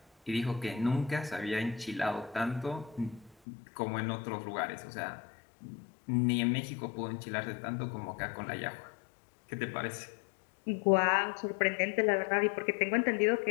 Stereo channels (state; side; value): drops out; right; at 3.4 s